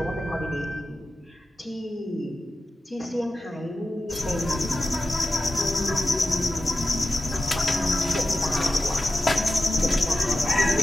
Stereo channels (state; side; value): normal; both; correlation 0.92